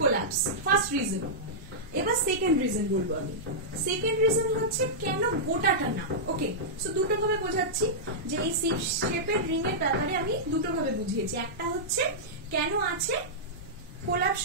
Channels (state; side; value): normal; both; correlation -0.11